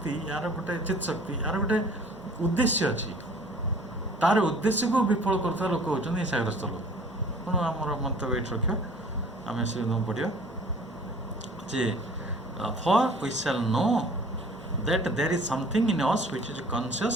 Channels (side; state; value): both; normal; correlation 0.50